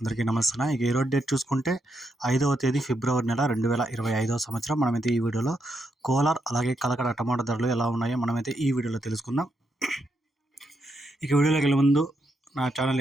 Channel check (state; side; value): normal; both; correlation 0.80